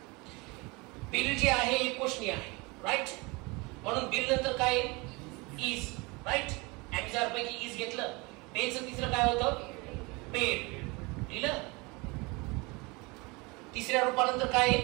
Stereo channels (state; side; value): quieter; left; 26.1 dB